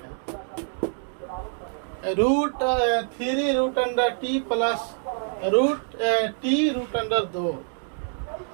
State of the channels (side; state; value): left; silent; digital silence